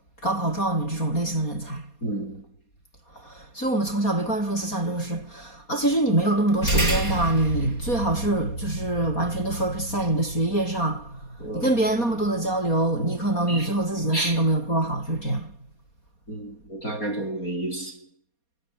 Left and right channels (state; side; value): late; right; 4.2 ms